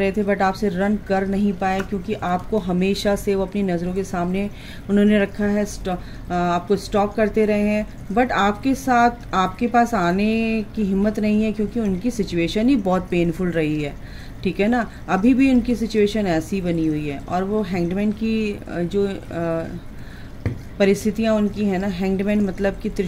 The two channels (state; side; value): identical; both; correlation 1.00